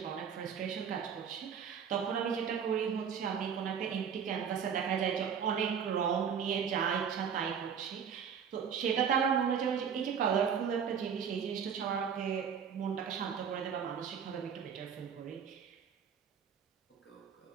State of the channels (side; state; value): left; quieter; 7.4 dB